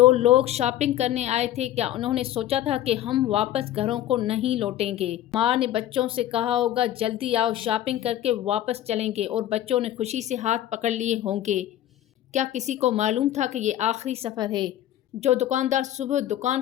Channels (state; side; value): quieter; right; 12.6 dB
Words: لوگ شاپنگ کرنے آئے تھے، کیا انہوں نے سوچا تھا کہ ہم واپس گھروں کو نہیں لوٹیں گے؟ ماں نے بچوں سے کہا ہوگا، جلدی آؤ، شاپنگ کر کے واپس چلیں گے، اور بچوں نے خوشی سے ہاتھ پکڑ لیے ہوں گے۔ کیا کسی کو معلوم تھا کہ یہ آخری سفر ہے؟ جو دکاندار صبح دکان